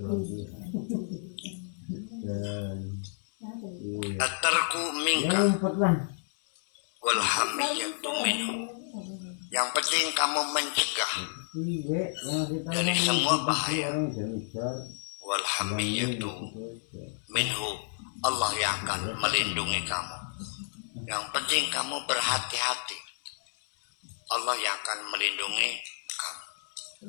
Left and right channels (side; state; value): right; silent; 58 dB below the other